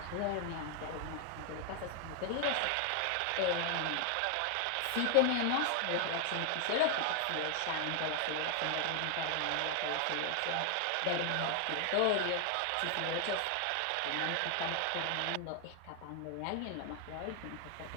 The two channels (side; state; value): both; different; correlation 0.00